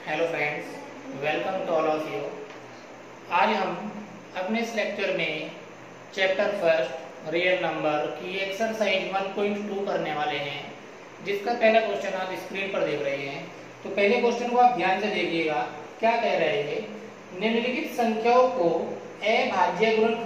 Hello friends, welcome to all of you. आज हम अपने इस लेक्चर में चैप्टर फर्स्ट रियल नंबर की एक्सरसाइज 1.2 करने वाले हैं, जिसका पहला क्वेश्चन आप स्क्रीन पर देख रहे हैं। तो पहले क्वेश्चन को आप ध्यान से देखिएगा। क्या कह रहे हैं? निम्नलिखित संख्याओं को अभाज्य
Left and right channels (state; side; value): identical; both; correlation 1.00